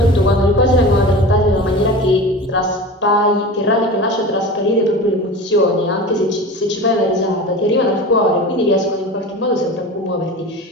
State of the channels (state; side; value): normal; both; correlation 0.33